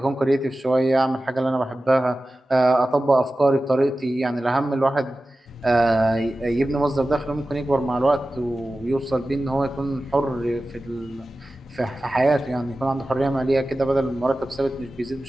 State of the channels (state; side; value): normal; both; correlation 0.95